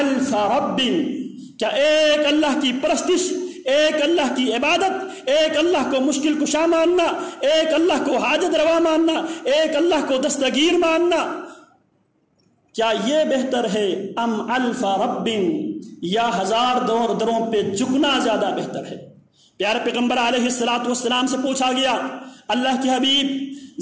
رب، کیا ایک اللہ کی پرستش، ایک اللہ کی عبادت، ایک اللہ کو مشکل کشا ماننا، ایک اللہ کو حاجت روا ماننا، ایک اللہ کو دستگیر ماننا، کیا یہ بہتر ہے ام الف رب، یا ہزار دروں پہ جھکنا زیادہ بہتر ہے؟ پیارے پیغمبر علیہ السلام سے پوچھا گیا، اللہ کے حبیب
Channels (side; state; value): both; identical; correlation 1.00